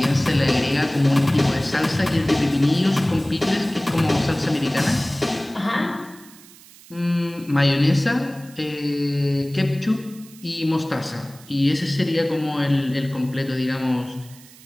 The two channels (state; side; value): noise; right; hiss, 22 dB below the sound